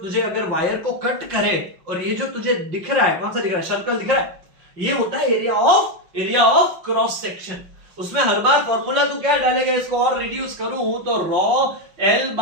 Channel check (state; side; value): late; left; 5.7 ms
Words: अगर वायर को कट करे और ये जो तुझे दिख रहा है, कौन सा दिख रहा है, सर्कल दिख रहा है, ये होता है एरिया ऑफ क्रॉस सेक्शन। उसमें हर बार फॉर्मूला तू क्या डालेगा, इसको और रिड्यूस करूं तो raw L